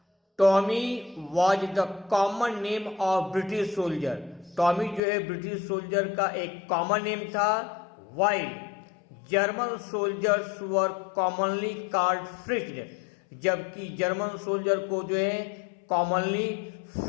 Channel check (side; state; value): right; drops out; at 5.0 s